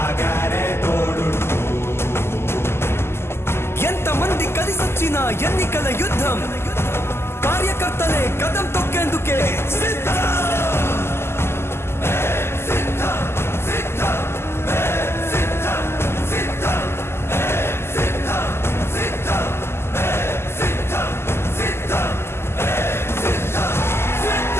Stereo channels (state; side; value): late; right; 0.12 ms